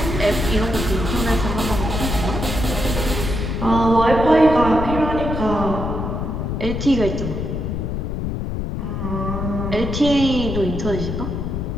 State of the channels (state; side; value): noise; left; rumble, 3 dB below the sound